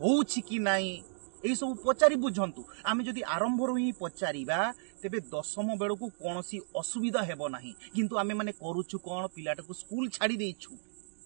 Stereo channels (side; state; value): left; silent; digital silence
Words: कि नहीं एई सब पचारि बुझंतु आमे जदि आरंभ रु ही पचारिबा तेबे 10वीं बेलू को कोनोसी असुविधा हेबो नाही किंतु आमे माने करूछु कोन पिलाटा को स्कूल छाड़ी देइछु